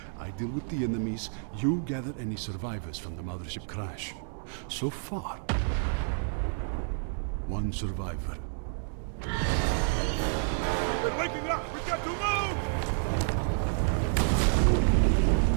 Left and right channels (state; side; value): silent; left; digital silence